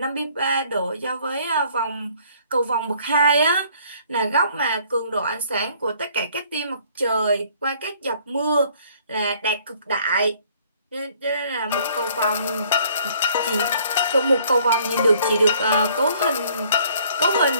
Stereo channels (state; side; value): inverted; both; correlation -0.59